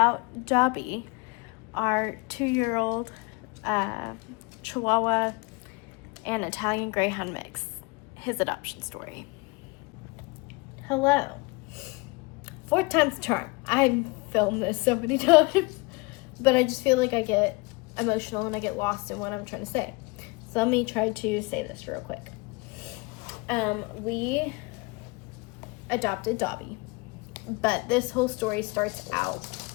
Dobby, our 2-year-old Chihuahua and Italian Greyhound mix, his adoption story. Hello. 4th time's the charm. I've filmed this so many times, but I just feel like I get emotional and I get lost in what I'm trying to say. So let me try to say this real quick. We adopted Dobby, but this whole story starts out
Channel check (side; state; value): right; quieter; 26.6 dB